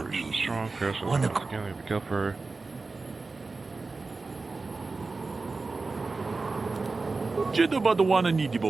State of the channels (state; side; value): quieter; left; 3.9 dB